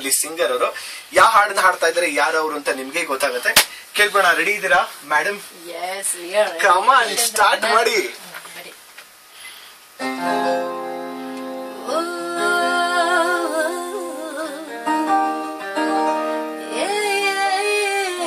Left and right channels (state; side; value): identical; both; correlation 1.00